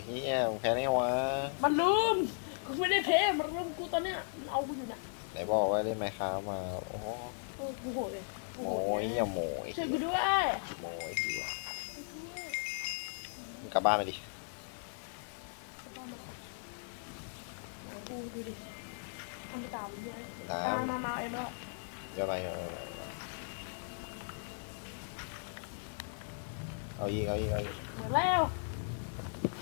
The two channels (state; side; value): silent; right; 53 dB below the other